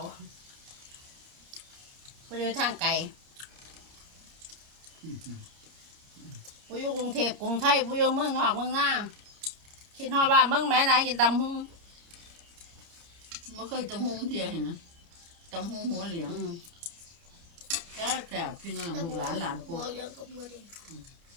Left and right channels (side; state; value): left; late; 29 ms